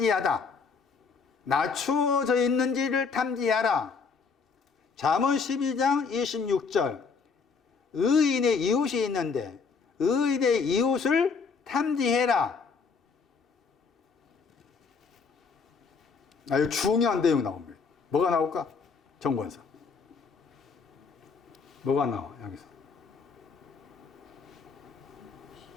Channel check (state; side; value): quieter; right; 5.2 dB